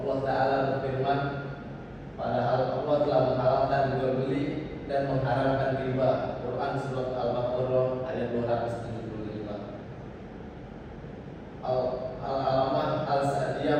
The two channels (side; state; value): both; identical; correlation 1.00